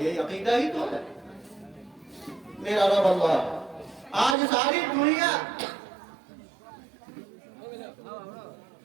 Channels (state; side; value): drops out; left; at 4.4 s